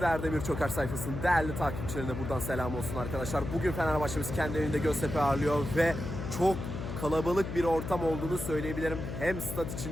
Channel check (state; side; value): noise; left; hum, 6 dB below the sound